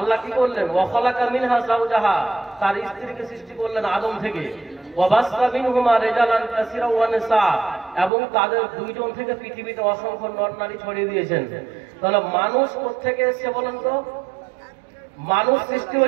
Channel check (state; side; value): drops out; left; at 8.1 s